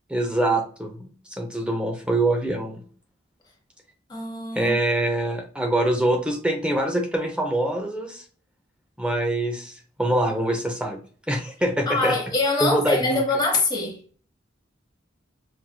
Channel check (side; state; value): both; normal; correlation 0.55